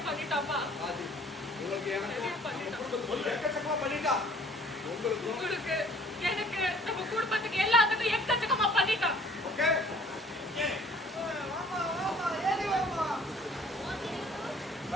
ராஜி உங்களுக்கு எனக்கு எக்கச்சக்கமா பண்ணிட்டா. உங்களுக்கு எனக்கு நம்ம குடும்பத்துக்கு எல்லாத்துக்கும் எக்கச்சக்கமா பண்ணிட்டான். ஓகே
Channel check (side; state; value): both; normal; correlation 0.55